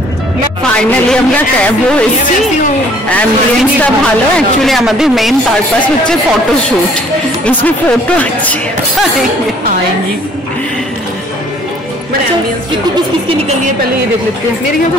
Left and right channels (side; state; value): both; normal; correlation 0.57